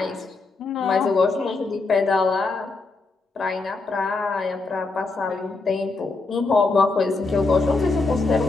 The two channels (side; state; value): right; quieter; 3.7 dB